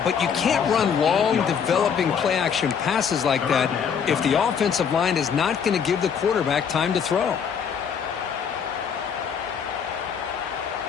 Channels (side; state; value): right; quieter; 7.1 dB